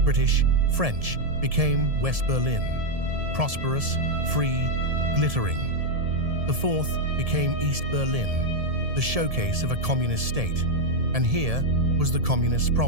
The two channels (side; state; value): left; late; 1.7 ms